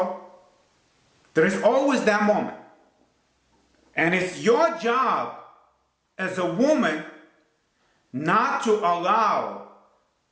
There is always that moment. And it's your job as a woman not to allow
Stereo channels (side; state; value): both; identical; correlation 1.00